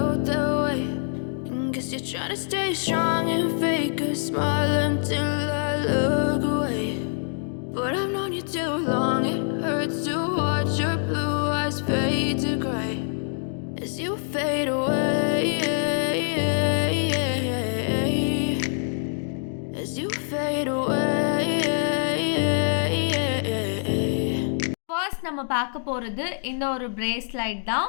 that way. And guess you're trying to stay strong and fake a smile until I look away. But I've known you too long, it hurts to watch your blue eyes fade to gray as you fade away, as you fade away. First நம்ம பார்க்க போகிறது இந்த ஒரு bracelet தான்.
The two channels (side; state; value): right; silent; digital silence